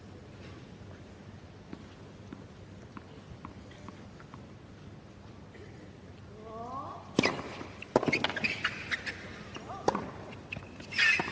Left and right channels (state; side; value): identical; both; correlation 1.00